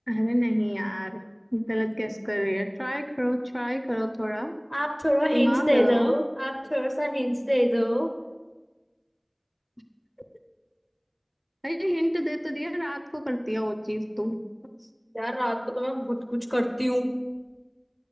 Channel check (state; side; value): identical; both; correlation 1.00